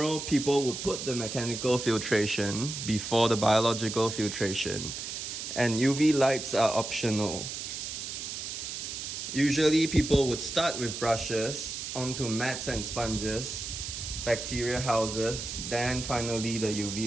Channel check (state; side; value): noise; right; hiss, 6 dB below the sound